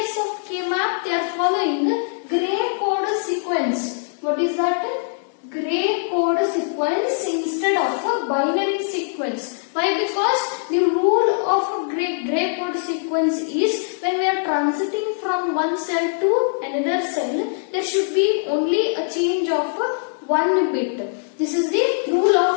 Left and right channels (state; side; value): silent; right; digital silence